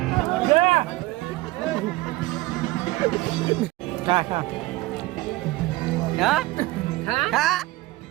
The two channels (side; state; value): left; quieter; 19.2 dB